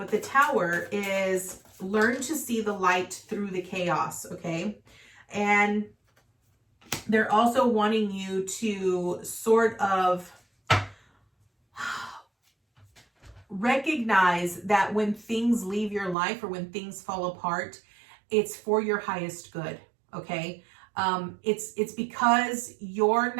the Tower is learn to see the light through the chaos, okay? And they're also wanting you to sort of recognize that when things leave your life or when things fall apart, it's for your highest good, okay? It's because you're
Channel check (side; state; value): left; drops out; at 16.2 s